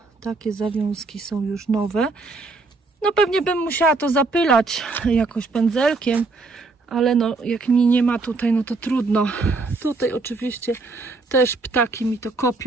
takie zawiązki są już nowe. No pewnie bym musiała to zapylać jakoś pędzelkiem, ale no jak mi nie ma tutaj, no to trudno. Tutaj oczywiście też ptaki mi to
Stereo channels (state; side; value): quieter; left; 3.7 dB